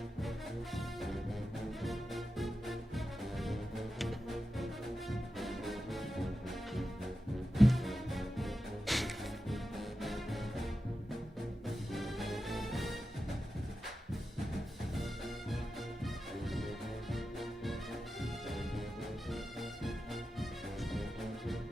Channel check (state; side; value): normal; both; correlation 0.91